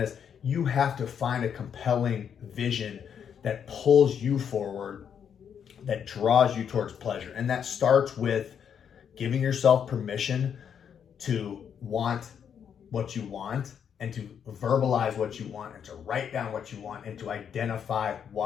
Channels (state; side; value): quieter; right; 8.0 dB